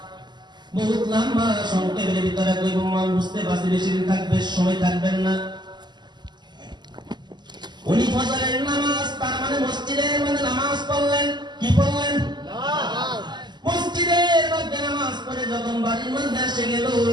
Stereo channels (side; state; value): left; late; 0.21 ms